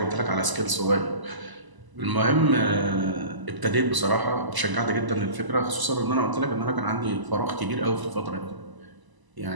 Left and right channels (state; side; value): late; left; 1.0 ms